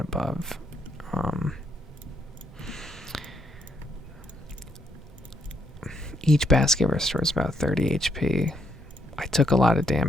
above, each basket restores about 30 HP. I took a lot of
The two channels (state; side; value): normal; both; correlation 0.75